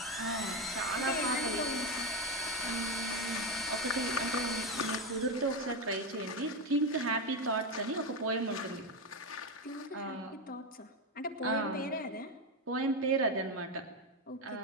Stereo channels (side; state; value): both; normal; correlation 0.12